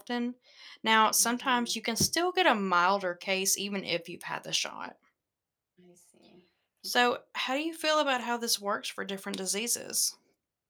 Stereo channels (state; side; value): identical; both; correlation 1.00